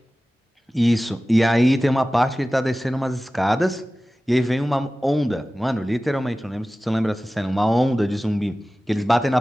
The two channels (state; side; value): normal; both; correlation 0.96